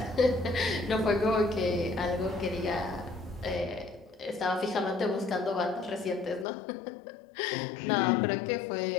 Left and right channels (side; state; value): right; drops out; at 6.5 s